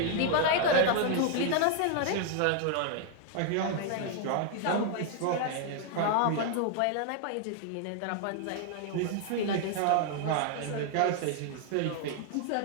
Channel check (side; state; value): both; different; correlation 0.00